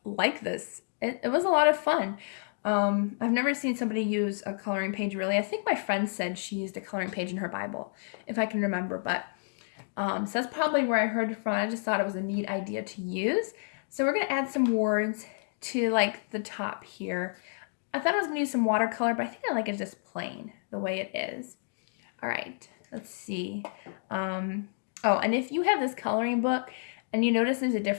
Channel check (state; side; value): silent; right; digital silence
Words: like this. It was a lot of fun. I've never seen somebody use a coloring page really. I think my friend said she used a coloring page in her Bible, if I can remember. But so that's probably where I heard it from. I just thought it was a neat idea to use. So we're going to add some words to like the top here. I thought I was going to use some watercolor, but I think I like it just plain the way it is. All right, let's see. Oh, and if you have this coloring book and you notice there's a